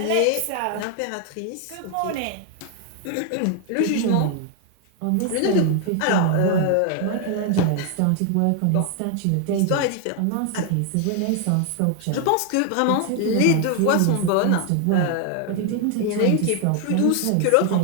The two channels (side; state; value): both; different; correlation 0.00